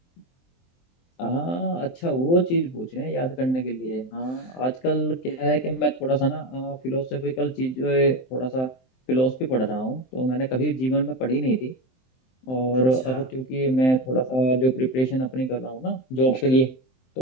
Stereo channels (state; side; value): late; right; 23 ms